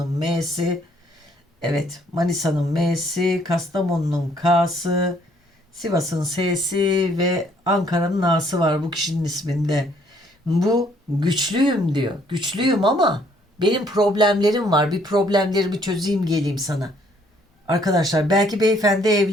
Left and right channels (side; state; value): both; normal; correlation 0.64